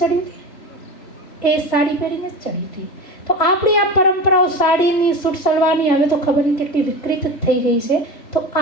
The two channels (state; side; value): late; right; 3.0 ms